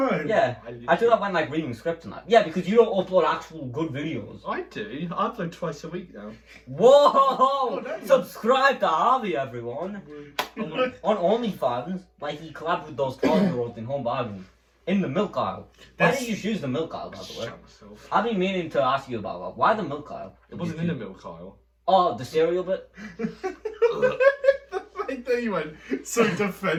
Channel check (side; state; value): both; identical; correlation 1.00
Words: Yeah, I do that when like reading scripts and that. Yeah, because you don't upload actual good videos. I do. I upload twice a week now. Whoa! damn. Subscribe to Harvey, everyone. On OnlyFans, like he collabed with those 12-year-olds in Home Bargains. In the milk aisle. Why did you choose the milk aisle, by the way? Shut myself. I've been meaning to ask you about that. Why the milk aisle? It wasn't in the milk aisle. Oh, the cereal bit? Like that you went so